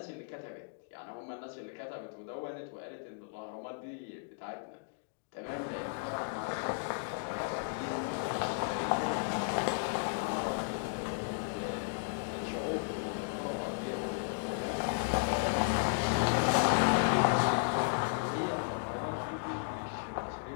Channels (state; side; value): quieter; right; 38.2 dB